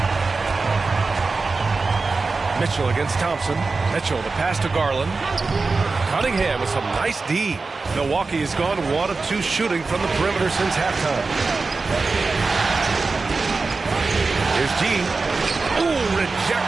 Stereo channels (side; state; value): left; quieter; 4.0 dB